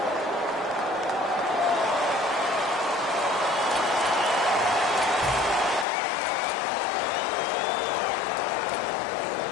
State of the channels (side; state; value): right; drops out; at 5.9 s